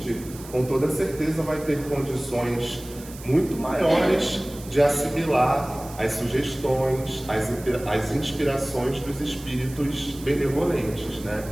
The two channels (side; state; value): right; noise; hiss, 17 dB below the sound